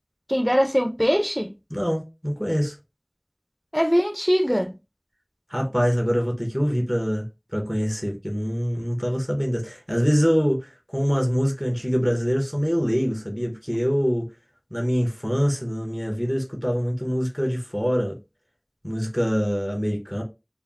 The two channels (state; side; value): identical; both; correlation 1.00